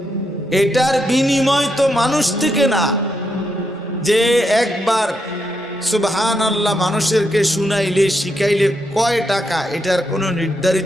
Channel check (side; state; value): both; normal; correlation 0.81